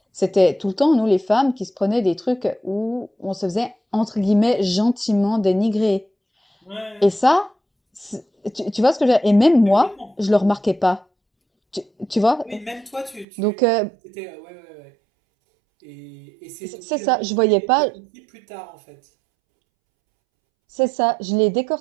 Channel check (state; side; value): drops out; left; at 13.2 s